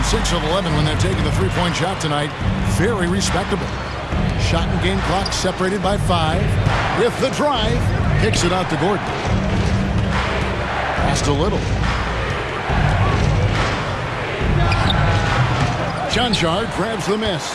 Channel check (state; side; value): identical; both; correlation 1.00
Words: 6 of 11 when they're taking the three-point shot tonight. Very respectable. Shot and game clock separated by 5. With the drive, kicks it out to Gordon. Passed a little. Jonshard grabs the miss.